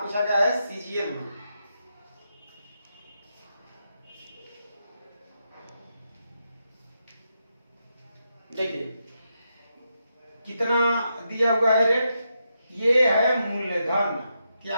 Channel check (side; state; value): both; inverted; correlation -0.84